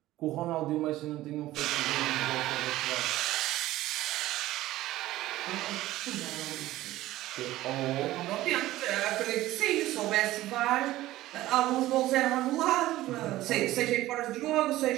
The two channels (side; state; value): left; quieter; 15.9 dB